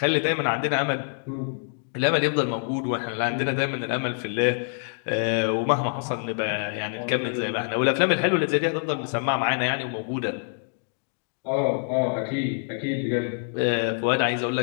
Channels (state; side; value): silent; right; digital silence